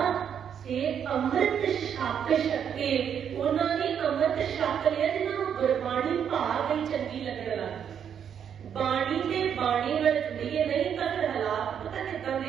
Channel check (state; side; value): quieter; left; 8.3 dB